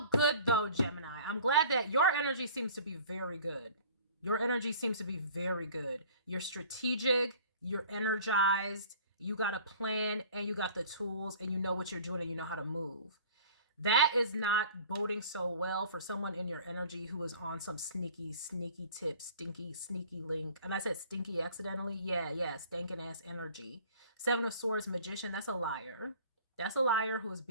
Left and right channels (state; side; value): inverted; both; correlation -0.47